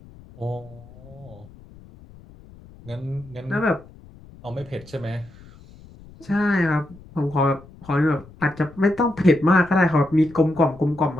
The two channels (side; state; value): left; noise; rumble, 22 dB below the sound